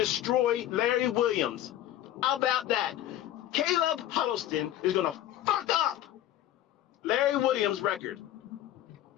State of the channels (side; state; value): right; quieter; 13.0 dB